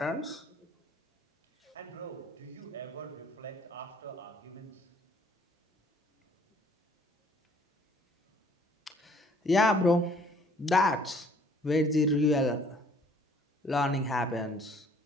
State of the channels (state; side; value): normal; both; correlation 0.59